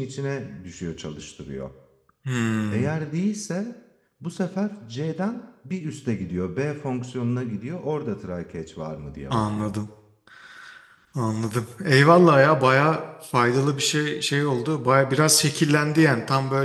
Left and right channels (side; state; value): both; identical; correlation 1.00